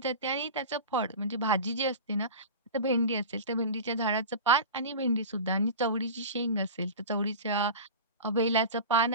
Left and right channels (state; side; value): inverted; both; correlation -0.31